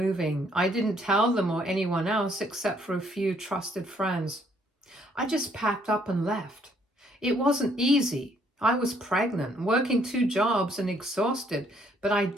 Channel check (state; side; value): normal; both; correlation 0.67